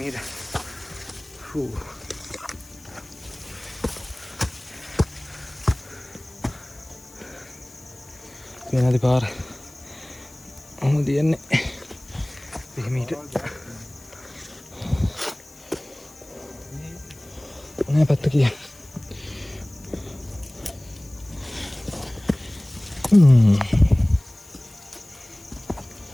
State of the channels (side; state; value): left; noise; hiss, 23 dB below the sound